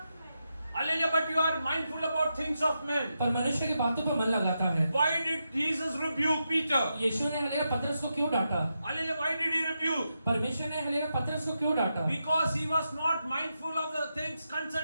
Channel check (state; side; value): inverted; both; correlation -0.86